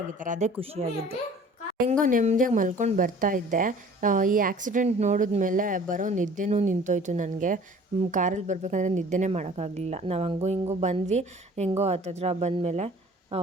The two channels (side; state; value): both; normal; correlation 0.49